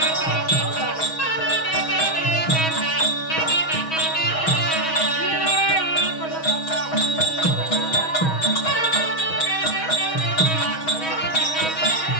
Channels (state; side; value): late; right; 6.3 ms